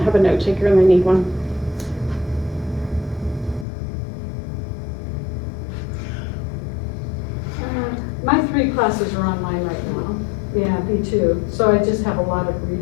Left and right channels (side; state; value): right; drops out; at 3.7 s